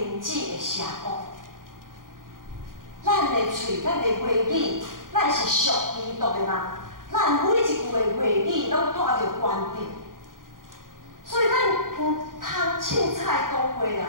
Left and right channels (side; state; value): left; late; 0.90 ms